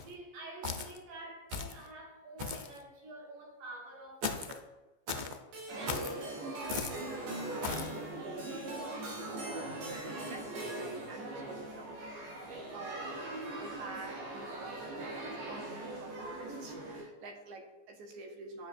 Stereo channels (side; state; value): left; late; 14 ms